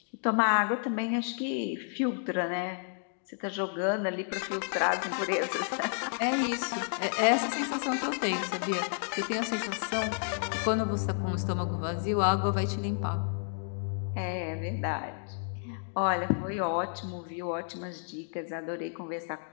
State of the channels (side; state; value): right; silent; 57 dB below the other